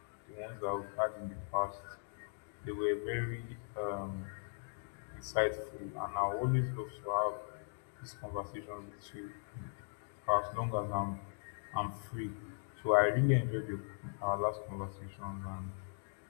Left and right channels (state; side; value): silent; right; digital silence